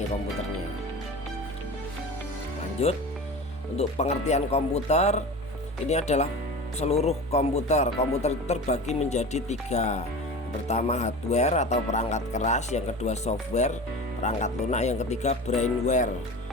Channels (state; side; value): normal; both; correlation 0.32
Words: komputernya. Lanjut, untuk pengertian komputer, ini adalah seluruh komputer. Komputer itu terbagi menjadi 3. Pertama hardware atau perangkat keras, yang kedua software, perangkat lunak, yang ketiga brainware.